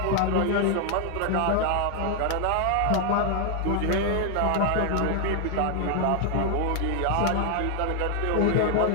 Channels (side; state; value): both; different; correlation 0.00